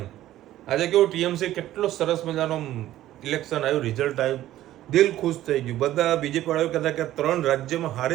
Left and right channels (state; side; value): quieter; left; 13.9 dB